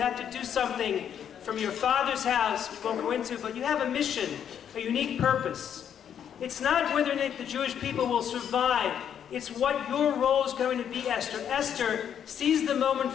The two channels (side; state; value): right; quieter; 8.9 dB